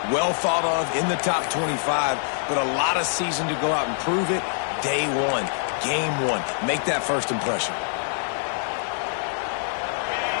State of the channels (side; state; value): right; silent; 62 dB below the other